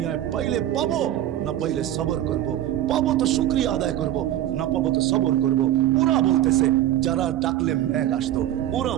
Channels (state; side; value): quieter; left; 12.6 dB